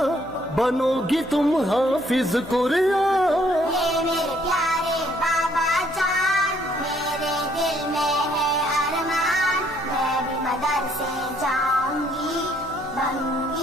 بنو گی تم حافظ قرآن۔ میرے پیارے بابا جان، میرے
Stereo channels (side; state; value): left; noise; hum, 22 dB below the sound